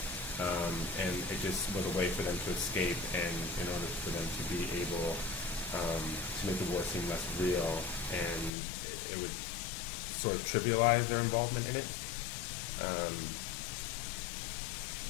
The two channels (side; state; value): right; drops out; at 8.5 s